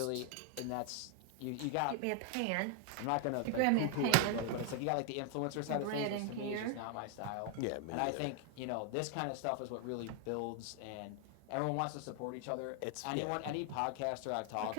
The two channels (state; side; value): different; both; correlation 0.00